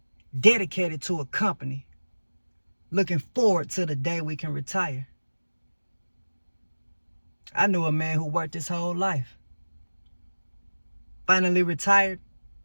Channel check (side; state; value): both; inverted; correlation -1.00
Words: dedicated to a company, looking forward to the day we can retire. I knew a man who worked his whole life, finally retired,